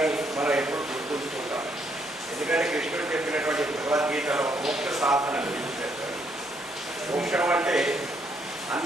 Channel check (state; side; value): normal; both; correlation 0.71